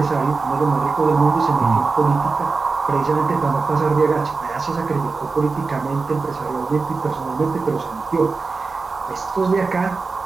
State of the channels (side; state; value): left; quieter; 4.2 dB